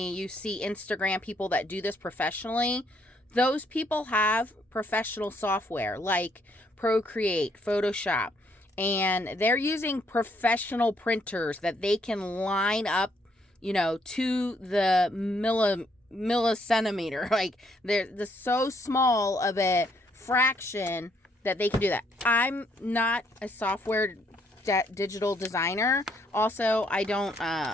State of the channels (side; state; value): both; normal; correlation 0.70